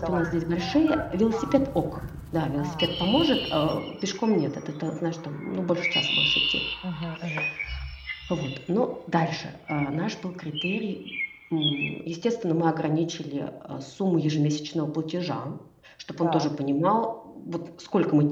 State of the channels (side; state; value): both; identical; correlation 1.00